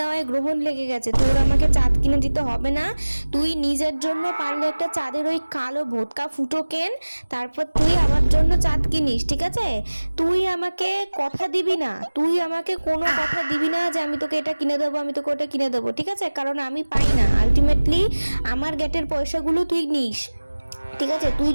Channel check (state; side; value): inverted; both; correlation -1.00